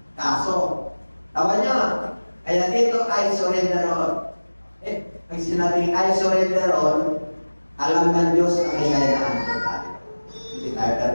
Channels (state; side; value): inverted; both; correlation -1.00